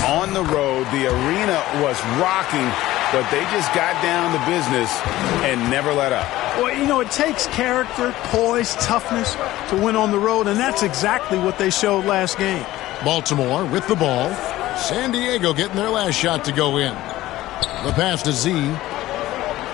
on the road. The arena was rocking, but they just got down to business and never let up. Well, you know, it takes character, poise, toughness to win on the road, and that's exactly what they showed last game. Baltimore with the ball. San Diego getting their last shot to go in. The pass to Z.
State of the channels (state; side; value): quieter; right; 16.1 dB